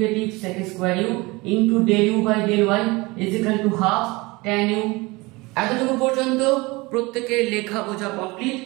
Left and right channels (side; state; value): left; quieter; 23.6 dB